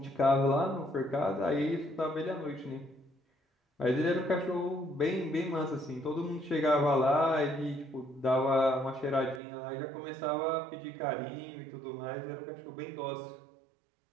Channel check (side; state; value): left; drops out; at 9.4 s